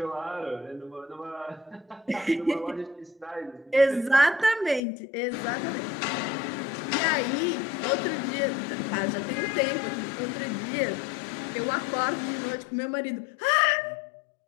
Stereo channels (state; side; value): drops out; right; at 4.8 s